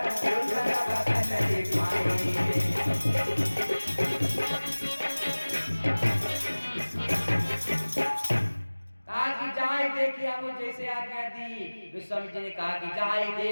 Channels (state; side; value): inverted; both; correlation -1.00